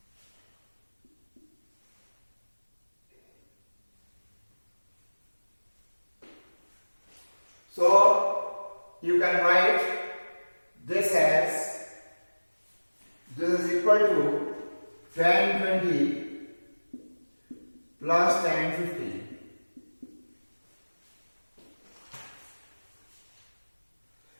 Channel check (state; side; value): inverted; both; correlation -1.00